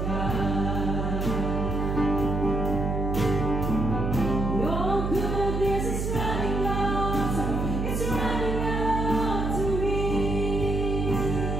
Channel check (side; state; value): right; noise; hum, 1 dB below the sound